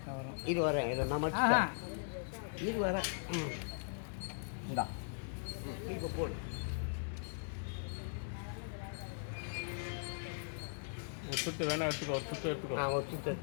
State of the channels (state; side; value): silent; right; digital silence